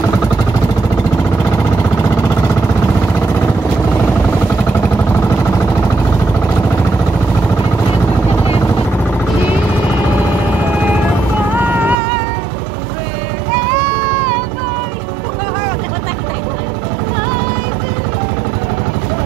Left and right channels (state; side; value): drops out; left; at 12.0 s